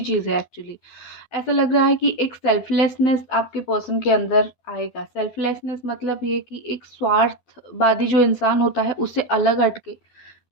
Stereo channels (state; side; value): late; right; 12 ms